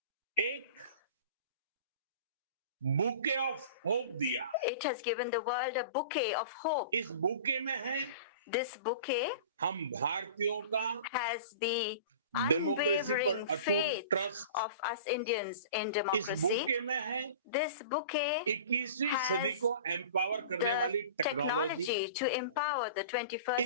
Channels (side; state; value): both; inverted; correlation -0.39